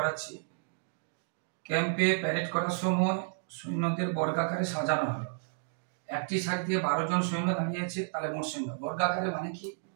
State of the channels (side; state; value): left; silent; digital silence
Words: ক্যাম্পে প্যারেড করার সময় সৈন্যদের বর্গাকারে সাজানো হলো। একটি সাইড দিয়ে 12 জন সৈন্য দাঁড়িয়েছে, তাহলে মোট সৈন্য। বর্গাকারে মানে কি?